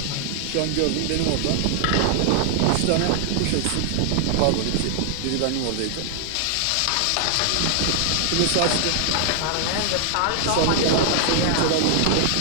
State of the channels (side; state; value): both; different; correlation 0.00